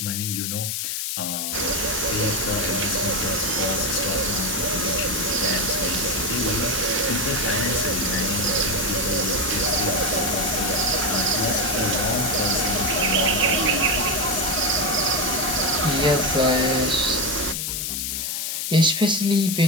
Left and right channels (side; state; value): left; noise; hiss, 2 dB below the sound